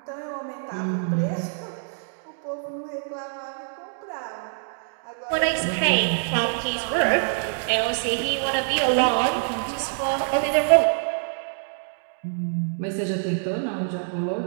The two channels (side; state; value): left; silent; digital silence